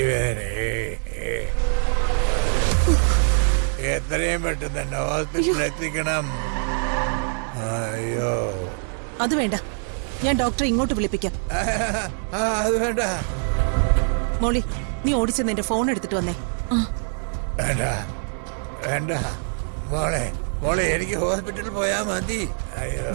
എത്രയും പെട്ടെന്ന് തന്നെ ഹോസ്പിറ്റലിൽ എത്തിക്കണം. അയ്യോ അത് വേണ്ട, ഞാൻ ഡോക്ടറെ ഇങ്ങോട്ട് വിളിപ്പിക്കാം. അത് വേണ്ട. മോളി, നീ ഓടിച്ചെന്ന് എന്റെ ഫോൺ എടുത്തിട്ട് വന്നേ. വേണ്ട വേണ്ട മോളെ, മോളെ എനിക്ക് ഹോസ്പിറ്റലിൽ പോയാ മതി. അയ്യോ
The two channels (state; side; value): silent; left; 58 dB below the other